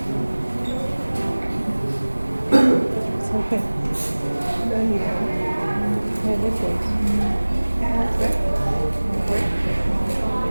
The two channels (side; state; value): both; inverted; correlation -1.00